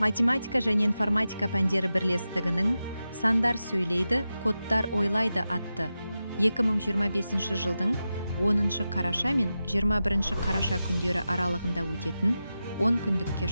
Математика және информатика пәндері бірлестігінің «Сандар сөйлейді, кодтар ойлайды» атты 2025 жылдың 10 қараша мен 21 қараша күндері аралығында өтетін 10 күндікке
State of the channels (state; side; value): inverted; both; correlation -0.92